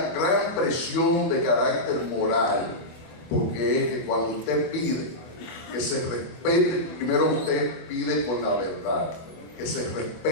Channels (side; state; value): right; late; 25 ms